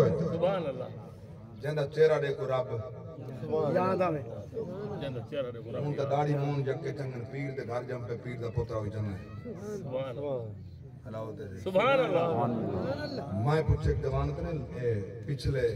ہے جنہا چہرہ دیکھو رب یاد آمیں ان تا داڑی مون جکے چنگن پیر دے گھر جم پہ پیر دا پترہ ہوئی چنگن سبحان اللہ میں پوچھے ایک دوانت نے پچھلے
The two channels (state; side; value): identical; both; correlation 1.00